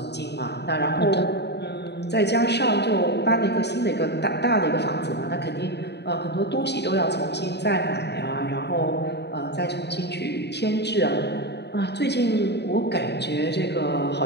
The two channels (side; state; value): right; late; 0.49 ms